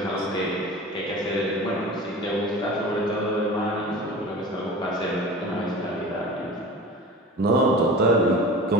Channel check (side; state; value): both; normal; correlation 0.37